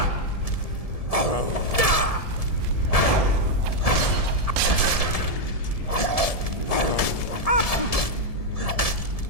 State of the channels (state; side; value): late; right; 1.7 ms